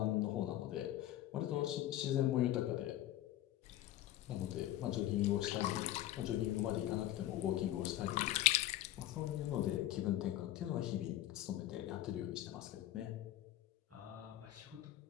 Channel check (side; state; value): right; quieter; 14.0 dB